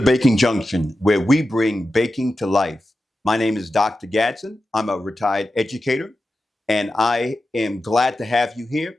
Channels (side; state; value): both; normal; correlation 0.92